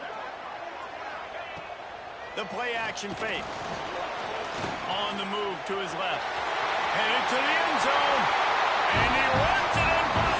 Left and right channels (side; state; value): both; identical; correlation 1.00